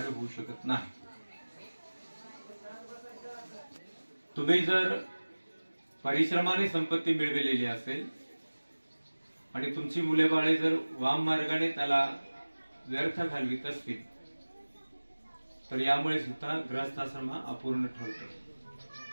होऊ शकत नाही. तुम्ही जर परिश्रमाने संपत्ती मिळवलेली असेल आणि तुमची मुले बाळे जर वाम मार्गाने त्याला व्यर्थ घालवित असतील तर यामुळे सुद्धा गृहस्थाश्रम हा अपूर्ण ठरतो.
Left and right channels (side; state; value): both; inverted; correlation -1.00